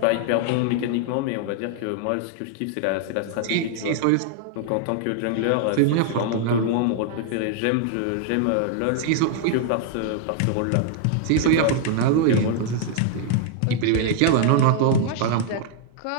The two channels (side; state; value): both; different; correlation 0.00